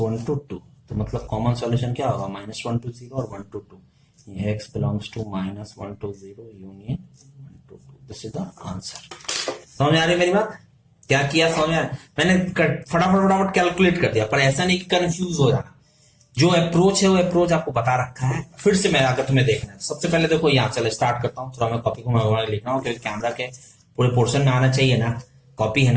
to 2, तो मतलब कॉमन सॉल्यूशन क्या होगा, -1 to 0 और 1 to 2। ये x belongs to -1 to 0 union 1 to 2, this is the answer. समझ आ रही मेरी बात, क्या किया समझ में, मैंने फटाफट कैलकुलेट कर दिया, पर ऐसा नहीं कि कंफ्यूज हो जाना। जो अप्रोच है वो अप्रोच आपको बता रखा है, फिर से मैं अगर तुम्हें देखना है, सबसे पहले देखो यहाँ चलो स्टार्ट करता हूँ, थोड़ा मैं कॉपी को मैं लिख रहा हूँ क्योंकि कैमरा के पूरे पोर्शन में आना चाहिए ना, कॉपी है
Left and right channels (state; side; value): identical; both; correlation 1.00